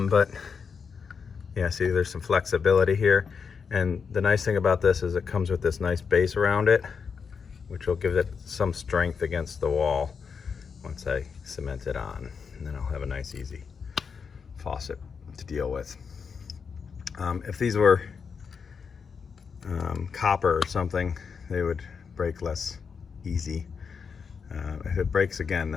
yeah, see, there's some flexibility here. And the nice thing about this is it comes with this nice base around it, which will give it some strength against the wall once I cement it on. And then I'll have a nice, easy faucet to deal with. If these were copper or something, they would break less easy. If it breaks again,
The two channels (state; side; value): quieter; right; 5.9 dB